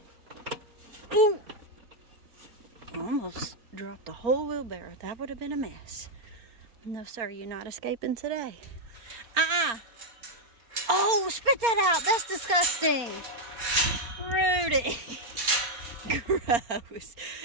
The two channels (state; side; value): late; left; 4.3 ms